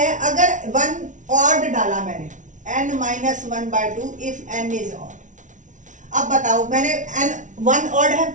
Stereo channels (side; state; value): left; late; 0.37 ms